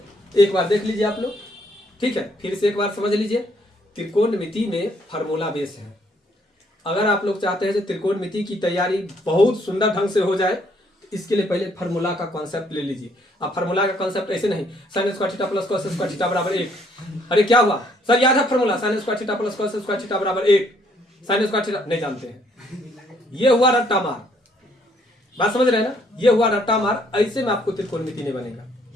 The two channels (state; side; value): normal; both; correlation 0.67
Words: एक बार देख लीजिए आप लोग, ठीक है। फिर से एक बार समझ लीजिए, त्रिकोणमिति में फार्मूला बेस है। अगर आप लोग चाहते हैं कि त्रिकोणमिति की तैयारी बहुत सुंदर ढंग से हो जाए, तो इसके लिए पहले फार्मूला का कॉन्सेप्ट ले लीजिए। अब फार्मूला का कॉन्सेप्ट ऐसे नहीं sin square theta plus cos square theta बराबर 1। अरे क्या हुआ सर, याद है formula sin square theta plus cos square theta बराबर 1, sin स्क्वायर थीटा नहीं जानते हैं, ये हुआ रट्टा मार। बात समझ रहे हैं ना, ये हुआ रट्टा मार। ऐसे में आपको त्रिकोणमिति नहीं बनेगा।